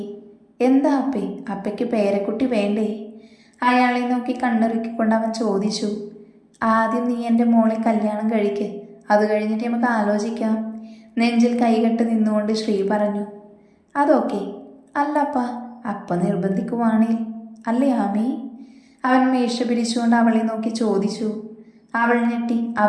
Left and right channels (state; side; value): identical; both; correlation 1.00